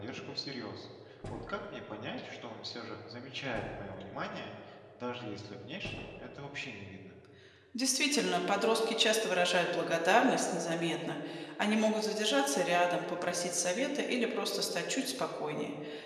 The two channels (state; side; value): identical; both; correlation 1.00